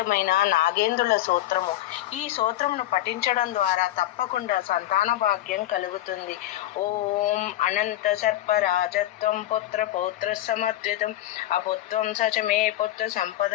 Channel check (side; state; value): right; quieter; 14.2 dB